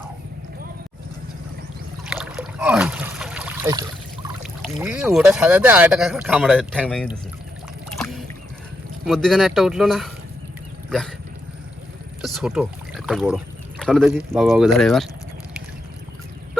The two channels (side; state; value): both; normal; correlation 0.82